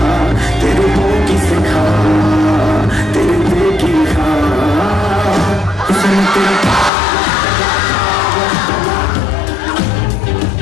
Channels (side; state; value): right; drops out; at 6.9 s